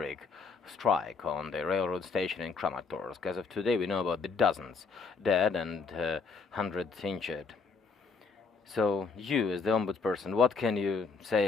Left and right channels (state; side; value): quieter; right; 4.9 dB